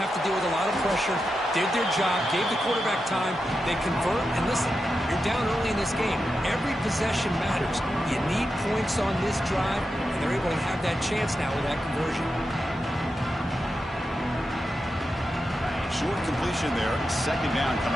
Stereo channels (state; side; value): normal; both; correlation 0.89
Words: to deal with a lot of pressure, did their job, gave the quarterback time. They convert, and listen, you're down early in this game. Every possession matters. You need points on this drive, and they're able to have that chance now with that conversion. Short completion there. Second down